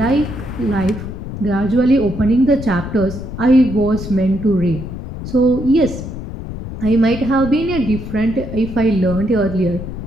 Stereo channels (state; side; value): noise; left; rumble, 9 dB below the sound